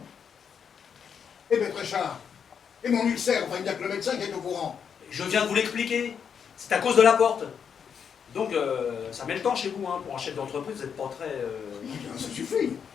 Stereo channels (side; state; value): right; quieter; 7.2 dB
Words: Eh bien, Tréchard. Et mon ulcère, enfin, il n'y a que le médecin qui est au courant. Je viens de vous l'expliquer. C'est à cause de la porte. Donc, ça met le temps chez vous, hein. Pour un chef d'entreprise, vous n'êtes pas très... Bien, ça suffit.